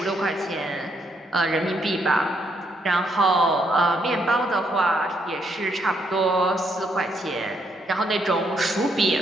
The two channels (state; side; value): normal; both; correlation 0.74